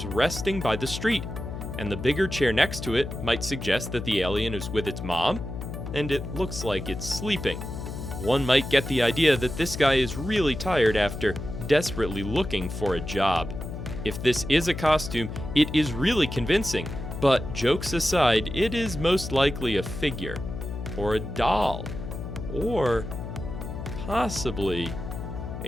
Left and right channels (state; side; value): noise; left; hum, 7 dB below the sound